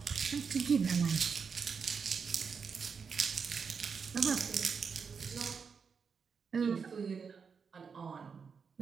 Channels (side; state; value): left; quieter; 5.9 dB